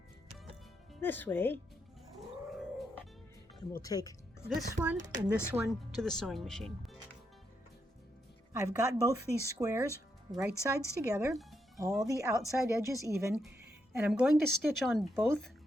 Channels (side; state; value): both; normal; correlation 0.80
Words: this way, and we'll take this one and this one to the sewing machine. I've got both these squares right sides together, all the outside edges even, and I'm going to stitch on both